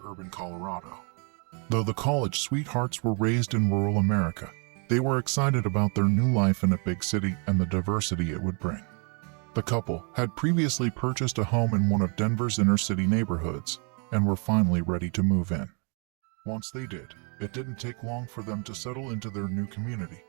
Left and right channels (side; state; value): left; quieter; 36.3 dB